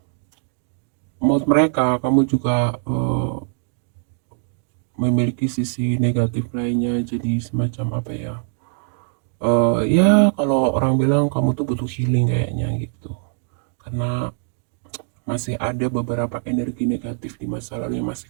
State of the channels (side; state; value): left; silent; digital silence